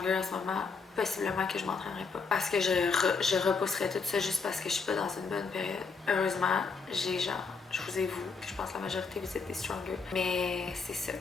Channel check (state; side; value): quieter; right; 4.9 dB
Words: en ce moment, possiblement que je m'entraînerais pas. Parce que je repousserais tout ça juste parce que je suis pas dans une bonne période. Heureusement, j'ai genre, je vous ai vous, je pense que la majorité vous êtes des Stronger. Mais c'est ça.